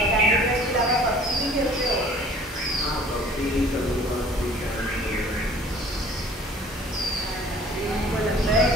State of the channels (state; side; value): normal; both; correlation 0.51